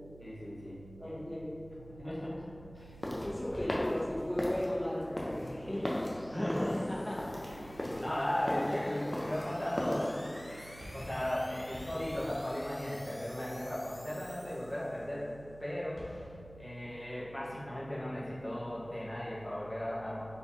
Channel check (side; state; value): right; noise; hum, 17 dB below the sound